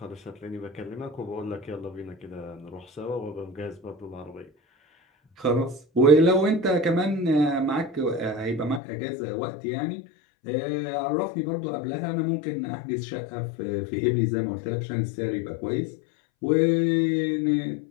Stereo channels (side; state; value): right; drops out; at 8.8 s